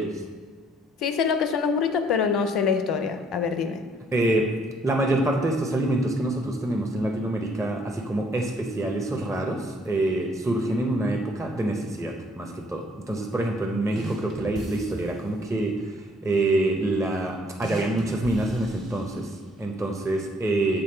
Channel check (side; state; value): both; normal; correlation 0.64